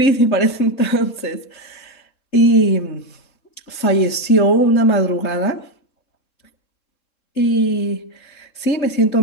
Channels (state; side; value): late; right; 3.7 ms